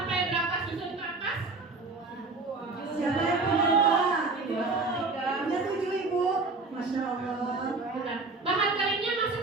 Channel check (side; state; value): left; quieter; 3.7 dB